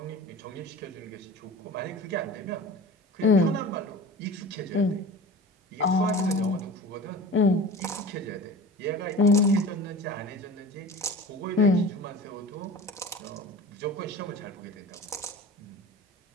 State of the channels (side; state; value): both; normal; correlation 0.37